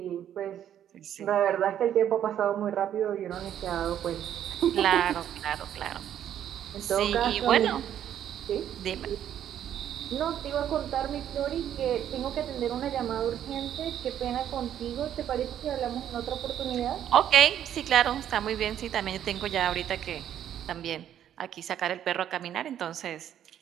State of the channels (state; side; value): quieter; left; 10.4 dB